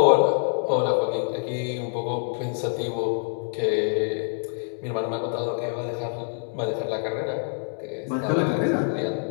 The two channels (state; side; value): silent; right; digital silence